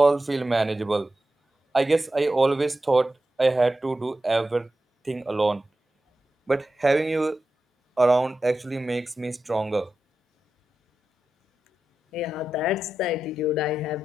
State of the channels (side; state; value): both; normal; correlation 0.91